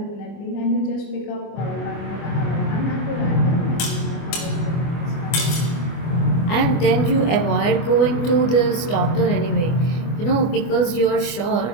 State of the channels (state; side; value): late; right; 25 ms